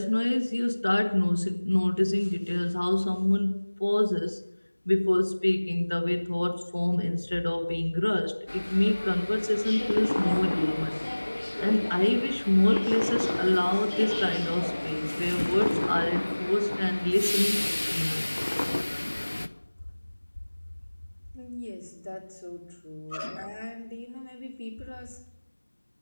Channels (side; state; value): both; inverted; correlation -1.00